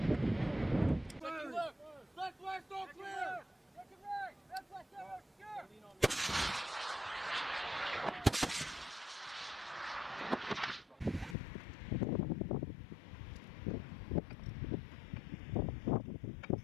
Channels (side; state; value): right; drops out; at 11.4 s